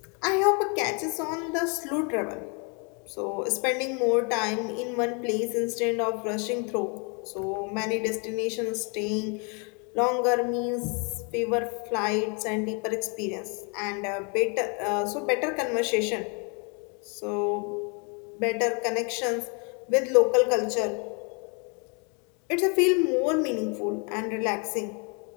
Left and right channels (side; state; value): right; quieter; 34.8 dB